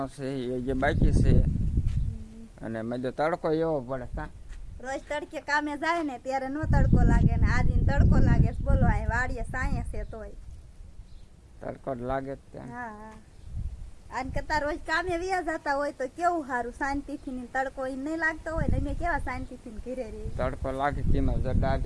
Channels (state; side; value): identical; both; correlation 1.00